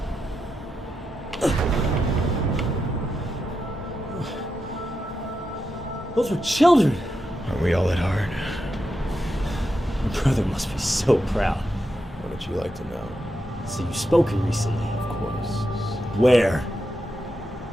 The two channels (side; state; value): both; normal; correlation 0.86